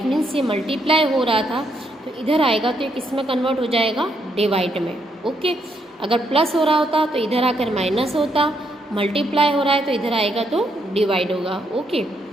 मीन्स ये मल्टीप्लाई हो रहा था तो इधर आएगा तो ये किस में कन्वर्ट हो जाएगा, डिवाइड में। ओके, अगर प्लस हो रहा होता तो इधर आकर माइनस होता, मल्टीप्लाई हो रहा है तो इधर आएगा तो डिवाइड होगा। ओके,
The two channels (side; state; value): both; normal; correlation 0.76